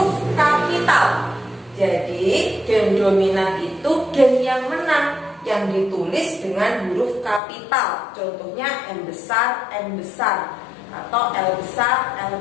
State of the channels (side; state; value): right; drops out; at 7.4 s